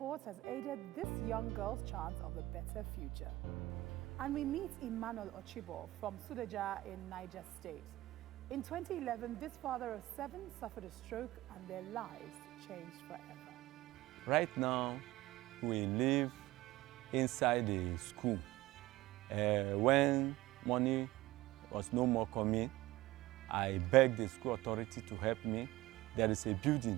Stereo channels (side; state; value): left; quieter; 18.1 dB